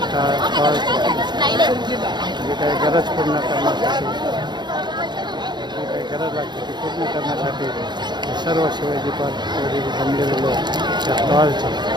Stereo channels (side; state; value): left; late; 0.21 ms